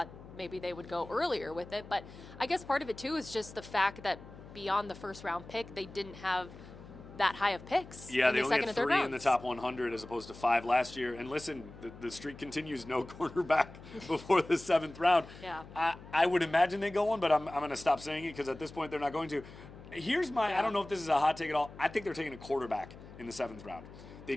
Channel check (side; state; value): left; noise; hum, 17 dB below the sound